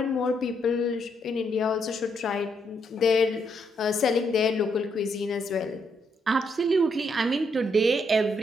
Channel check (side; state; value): both; normal; correlation 0.76